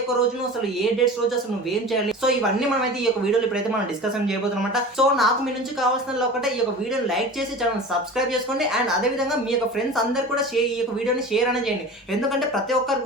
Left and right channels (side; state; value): both; normal; correlation 0.35